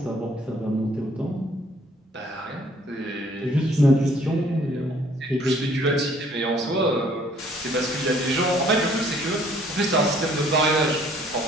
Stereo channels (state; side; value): normal; both; correlation 0.60